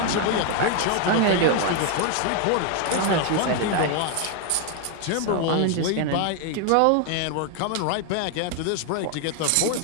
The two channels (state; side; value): different; both; correlation 0.01